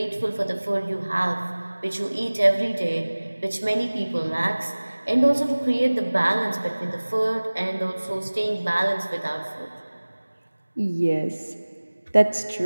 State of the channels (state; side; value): inverted; both; correlation -1.00